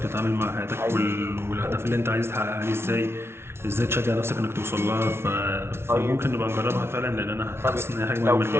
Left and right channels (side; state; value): left; late; 0.12 ms